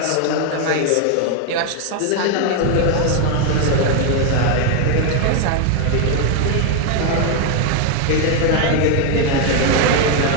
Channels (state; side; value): different; both; correlation 0.01